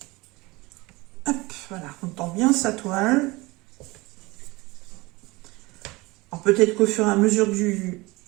hop, voilà, on tend bien sa toile. Alors peut-être qu'au fur et à mesure du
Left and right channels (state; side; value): quieter; left; 22.7 dB